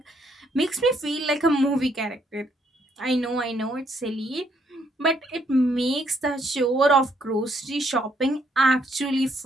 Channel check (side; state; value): both; normal; correlation 0.71